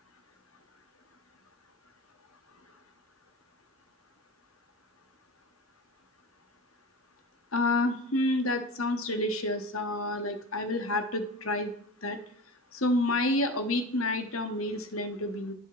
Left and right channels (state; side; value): normal; both; correlation 0.30